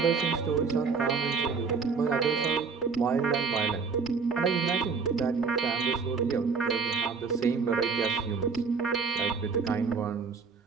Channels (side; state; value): left; quieter; 5.1 dB